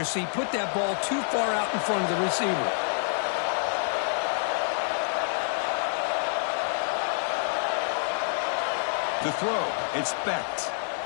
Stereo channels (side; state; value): right; silent; digital silence